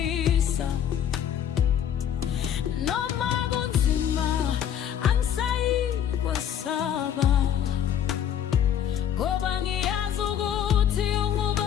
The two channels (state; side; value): quieter; right; 9.6 dB